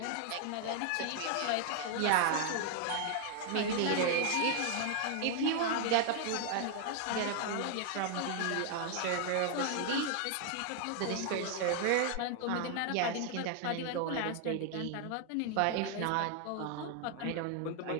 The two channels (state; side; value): different; both; correlation 0.00